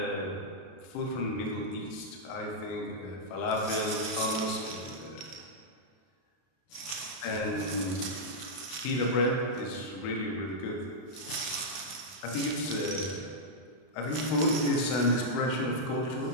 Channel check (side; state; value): right; late; 31 ms